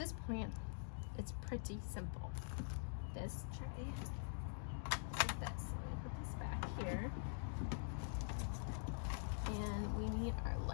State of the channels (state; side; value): silent; right; digital silence